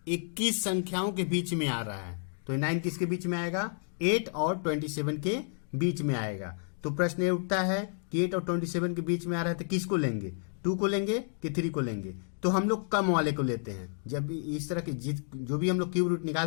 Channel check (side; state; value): right; silent; digital silence